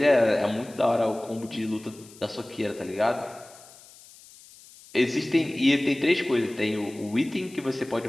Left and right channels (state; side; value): noise; left; hiss, 22 dB below the sound